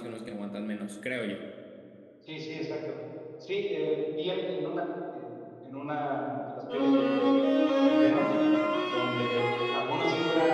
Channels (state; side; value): identical; both; correlation 1.00